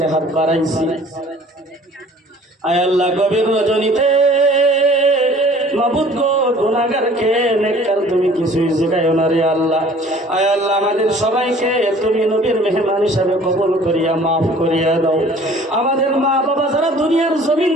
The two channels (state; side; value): normal; both; correlation 0.51